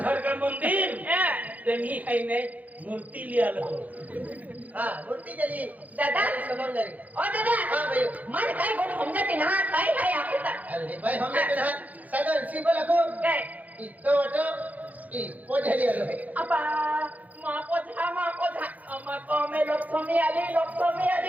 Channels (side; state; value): left; late; 0.077 ms